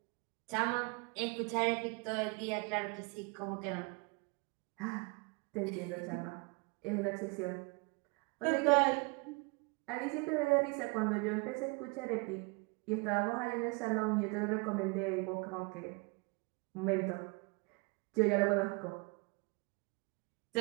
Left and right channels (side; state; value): left; quieter; 30.2 dB